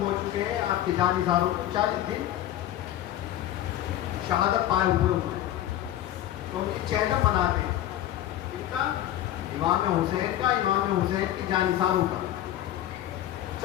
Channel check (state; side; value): quieter; right; 12.6 dB